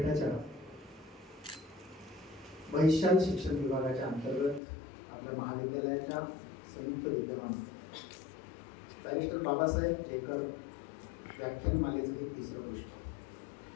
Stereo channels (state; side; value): drops out; right; at 4.6 s